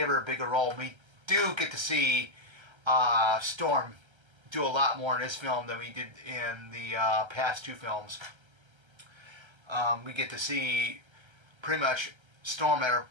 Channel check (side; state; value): left; late; 1.3 ms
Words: her a bigger role. We do get to see Storm do a lot more in this film than we did in the past two films. We get to see pretty much Storm at her